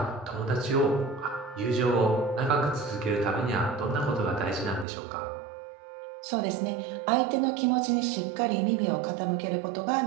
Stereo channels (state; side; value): drops out; left; at 4.9 s